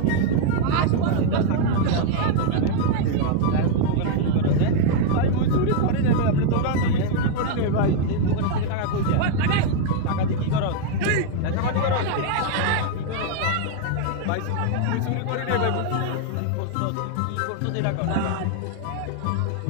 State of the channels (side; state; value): both; different; correlation 0.00